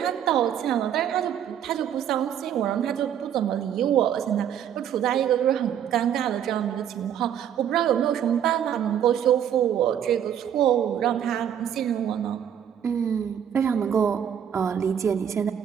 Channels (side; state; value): left; quieter; 9.3 dB